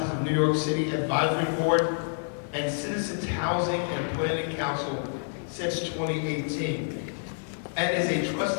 of New York City Advisory Board and Citizens Housing and Planning Council since 2018, and is a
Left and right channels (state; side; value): silent; right; digital silence